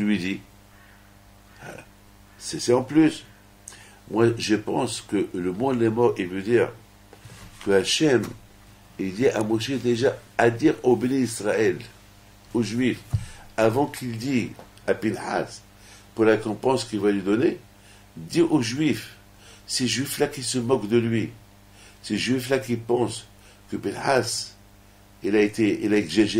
dis? C'est en plus. Moi, je pense que le mot les morts, il veut dire que Hachem, il dit à Moshe déjà à dire au béni Israël, aux Juifs, avant qu'il dise à Pinhas, pour la récompense qu'il va lui donner, dit aux Juifs, ces Juifs-là qui se moquent de lui, ces Juifs-là qui pensent que Pinhas, il a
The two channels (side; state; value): both; identical; correlation 1.00